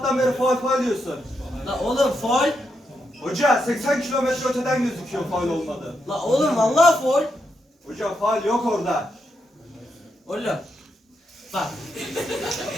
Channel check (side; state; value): both; normal; correlation 0.82